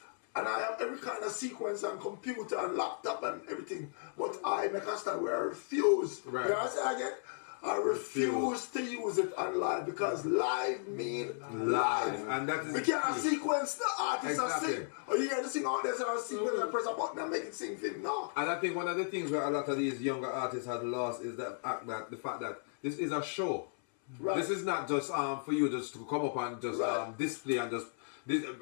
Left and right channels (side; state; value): right; silent; 54 dB below the other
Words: and I have every kind of sequence and computer and laptop and everything. But I make a stand where I refuse. Right. You know what I say again? I refuse to use it on live because live mean live. And that is we can't sequence the artist Exactly. and sing. Or you hear the sing out there and sequence and press a button and make it sing thing. No. And I think one of the things where a lot of these younger artists have lost is the fact that this is a show. Right. This is not just for you just to come up and just Right. display and just. This,